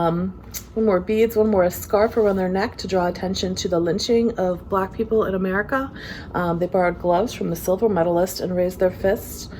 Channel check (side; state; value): both; identical; correlation 1.00